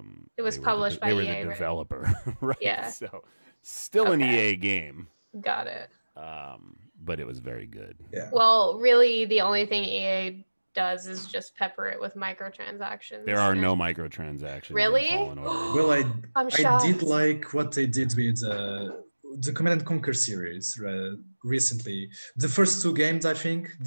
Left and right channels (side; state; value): both; inverted; correlation -1.00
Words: It was they were published by they were EA, the right? developer, right? Yeah. So still an Okay. EA game, Got it. but it was very good. Yeah. Well, really, the only thing EA does is just pepper it with microtransactions. There are no microtransactions. Really? In Fallen Order. Well, I'm I shocked. did like what they did with the Command and Conquer series recently. The first two games, I think,